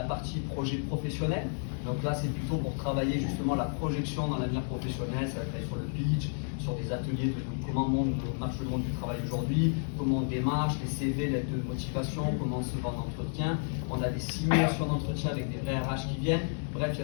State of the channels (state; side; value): silent; right; 57 dB below the other